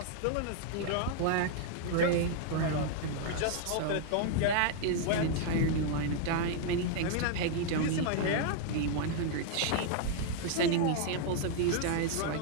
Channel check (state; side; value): different; both; correlation 0.00